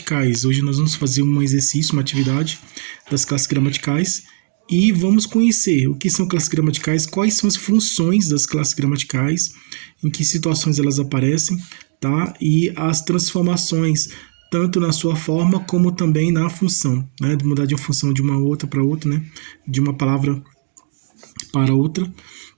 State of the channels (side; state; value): left; silent; digital silence